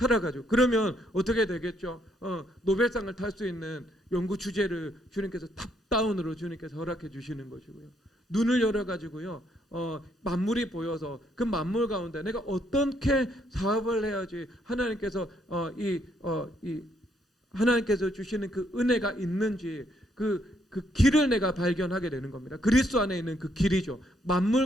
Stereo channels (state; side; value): normal; both; correlation 0.72